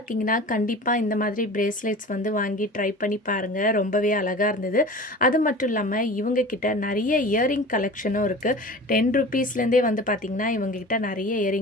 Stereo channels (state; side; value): normal; both; correlation 0.37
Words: கண்டிப்பாக இந்த மாதிரி பிரேஸ்லெட்ஸ் வந்து வாங்கி ட்ரை பண்ணி பாருங்கள். ரொம்பவே அழகாக இருந்தது. அது மட்டும் இல்லாமல் இவங்கக்கிட்ட நிறைய இயரிங் கலெக்ஷனும் இருக்குது. 10 ருப்பீஸ்லேருந்தே வந்து பார்த்திங்கன்னா இவங்கக்கிட்ட நிறைய